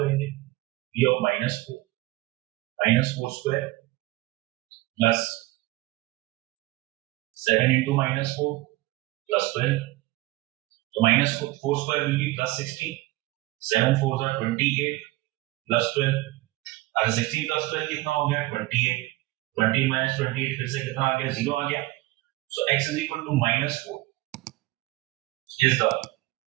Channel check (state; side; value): quieter; left; 19.0 dB